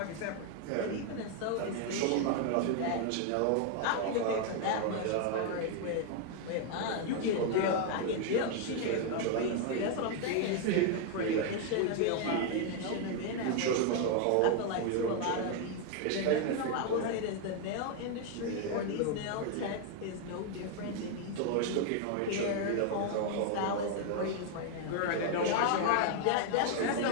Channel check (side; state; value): both; different; correlation 0.01